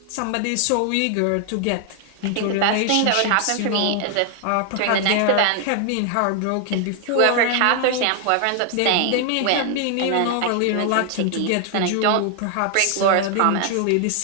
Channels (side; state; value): both; different; correlation 0.00